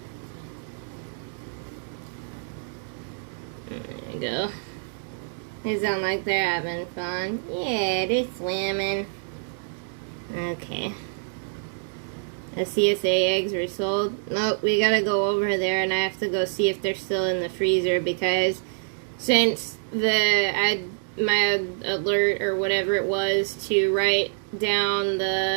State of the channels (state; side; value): silent; left; digital silence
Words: There you go. They sound like they're having fun. Yeah, they're swimming. Okay. The CSA eggs were sold. Nope, we gotta go over there and I have to go see if they're still in the freezer, because since my alert or whatever it was to write